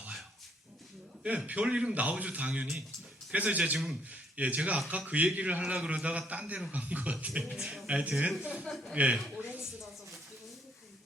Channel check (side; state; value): both; normal; correlation 0.68